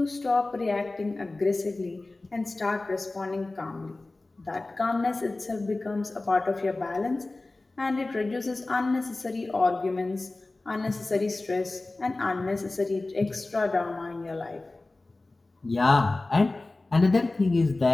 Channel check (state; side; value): quieter; right; 3.1 dB